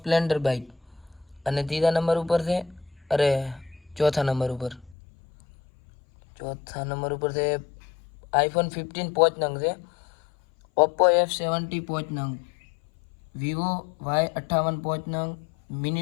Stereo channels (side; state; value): right; drops out; at 5.0 s